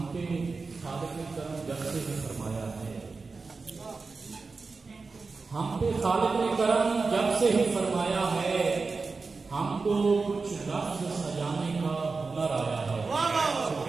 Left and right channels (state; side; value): quieter; left; 4.2 dB